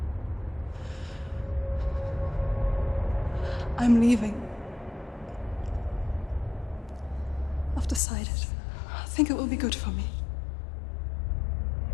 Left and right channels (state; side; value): drops out; right; at 8.0 s